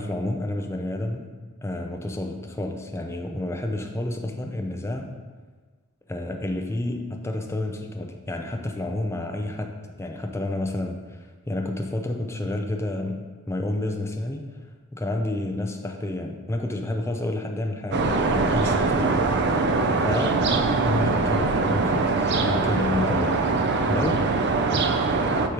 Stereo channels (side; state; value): both; normal; correlation 0.38